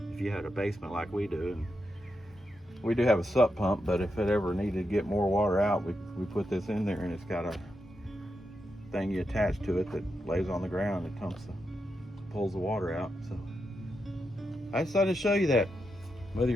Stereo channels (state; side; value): normal; both; correlation 0.85